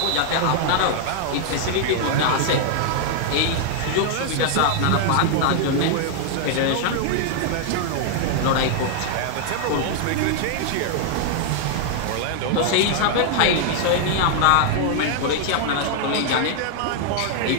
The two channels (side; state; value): both; different; correlation 0.00